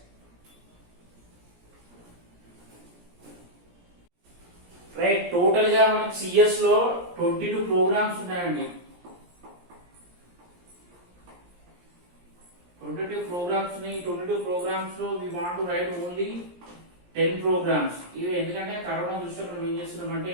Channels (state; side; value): late; left; 17 ms